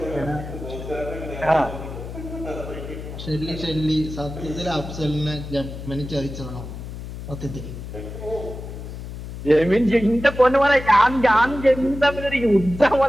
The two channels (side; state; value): left; noise; hum, 10 dB below the sound